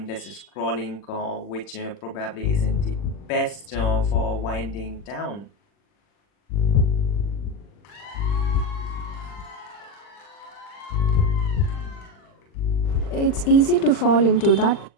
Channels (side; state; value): right; late; 40 ms